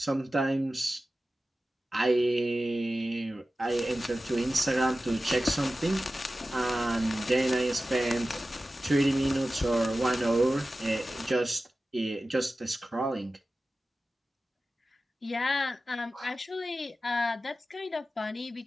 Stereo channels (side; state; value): both; normal; correlation 0.94